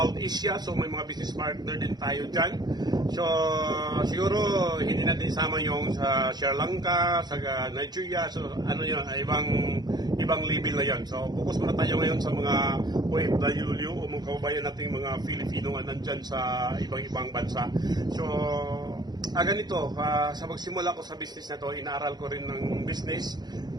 Asia. So may mga business partner din tayo dyan. So siguro hindi natin isama yung sa Sri Lanka, sa Nigeria. So ano yun, ibang level na yan. So focus muna tayo ngayon sa mga OFW o mga kababayan nating mga Filipino na nandyan sa ibang bansa. So ganito, sa magsimula ko sa business na to, inaaral ko rin ng business.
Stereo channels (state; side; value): late; left; 0.20 ms